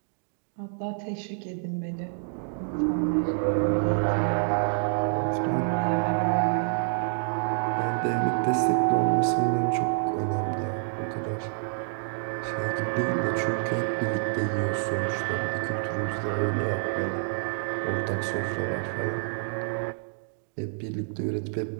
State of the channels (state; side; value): silent; left; digital silence